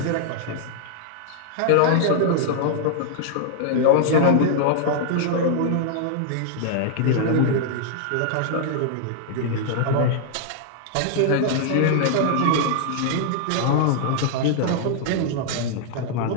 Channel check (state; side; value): different; both; correlation -0.01